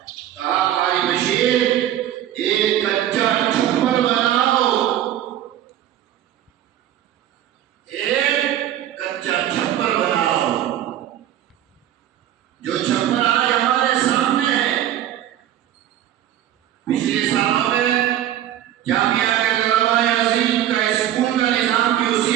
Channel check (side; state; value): left; quieter; 11.7 dB